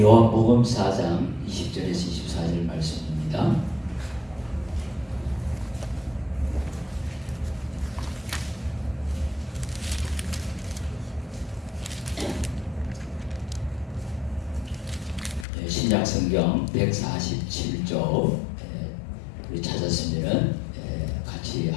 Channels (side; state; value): right; drops out; at 15.5 s